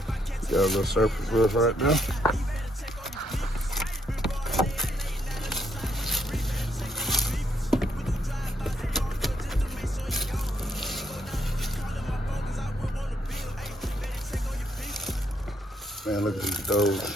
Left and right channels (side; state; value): both; normal; correlation 0.74